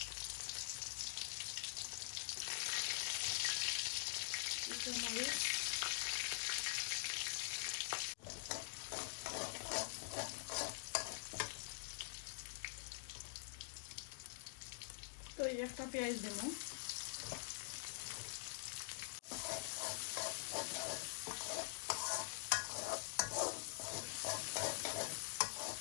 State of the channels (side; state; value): right; silent; digital silence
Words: মরিচ, তো একটা পেঁয়াজ দেব।